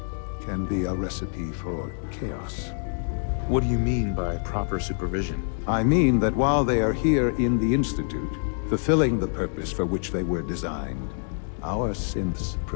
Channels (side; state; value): right; silent; 61 dB below the other